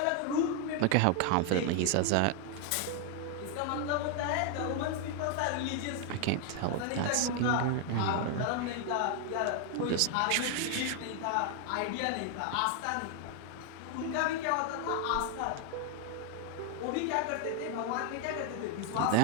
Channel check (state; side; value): different; both; correlation 0.00